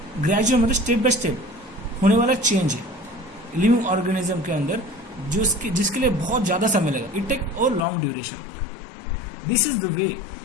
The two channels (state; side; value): drops out; right; at 7.9 s